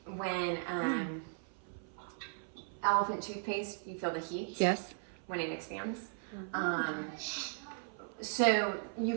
When elephant toothpaste, you feel the heat. Yes. When it expands. So you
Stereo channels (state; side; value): silent; left; 53 dB below the other